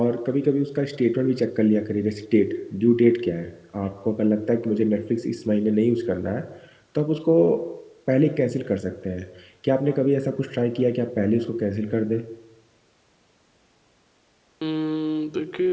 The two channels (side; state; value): both; identical; correlation 1.00